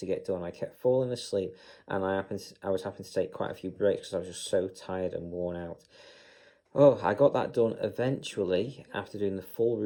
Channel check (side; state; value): both; identical; correlation 1.00